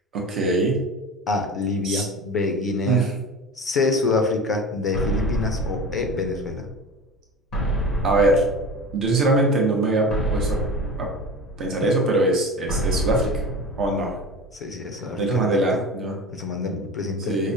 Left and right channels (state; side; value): normal; both; correlation 0.33